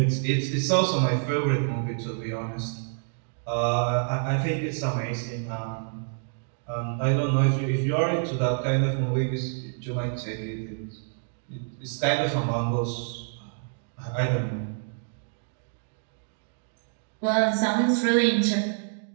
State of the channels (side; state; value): left; silent; 60 dB below the other